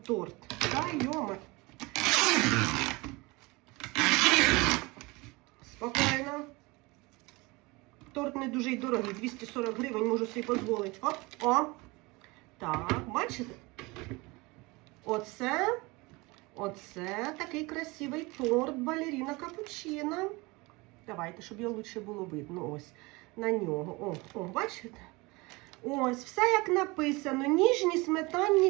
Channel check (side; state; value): left; quieter; 24.3 dB